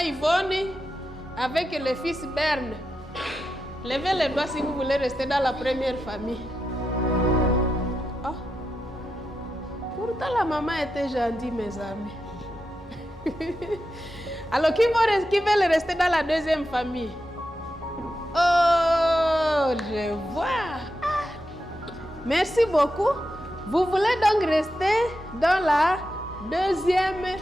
Yvonne avec le fils Berne. Levez les doigts si vous voulez rester dans la première famille. Oh. Pourtant, la maman était gentille, mes amis. Alors, qui veulent rester dans la deuxième famille? Oh, je vois. Ah. Merci beaucoup. Vous voulez donc rester dans la deuxième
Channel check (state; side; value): normal; both; correlation 0.88